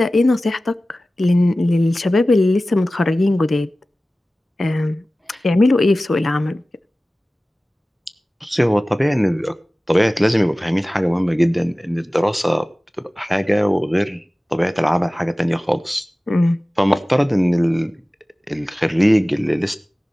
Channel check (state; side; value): normal; both; correlation 0.97